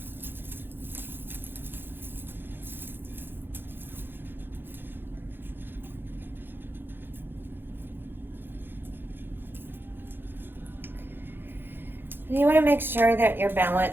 You want to make sure that you're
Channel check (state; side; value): late; left; 0.10 ms